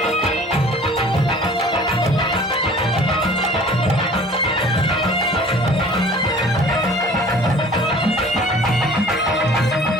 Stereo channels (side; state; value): both; normal; correlation 0.48